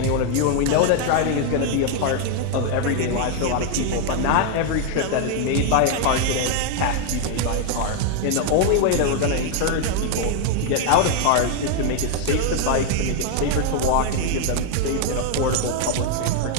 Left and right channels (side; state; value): both; different; correlation 0.00